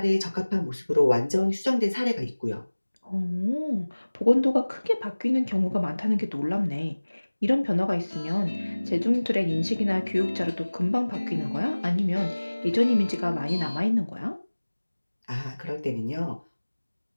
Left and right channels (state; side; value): inverted; both; correlation -1.00